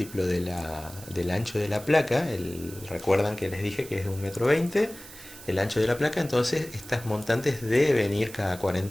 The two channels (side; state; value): right; noise; hiss, 17 dB below the sound